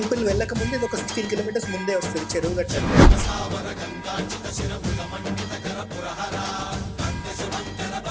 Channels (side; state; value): both; identical; correlation 1.00